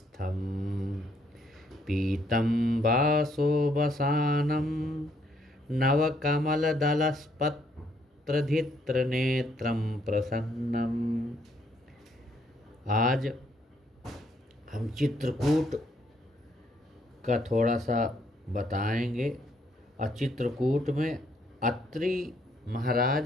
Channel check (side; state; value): both; normal; correlation 0.70